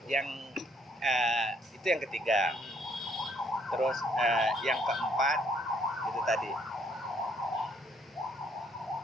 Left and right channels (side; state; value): both; normal; correlation 0.66